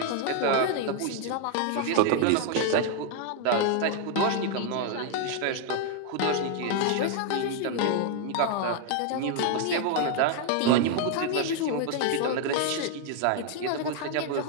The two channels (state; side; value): different; both; correlation 0.00